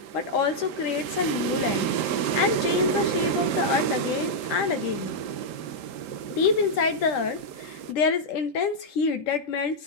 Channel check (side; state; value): right; late; 3.8 ms